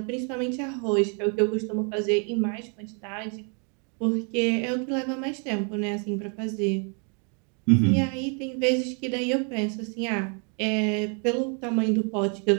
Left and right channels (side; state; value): left; quieter; 38.0 dB